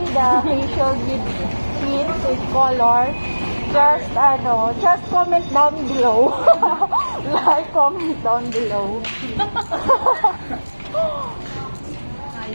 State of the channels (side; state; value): both; inverted; correlation -1.00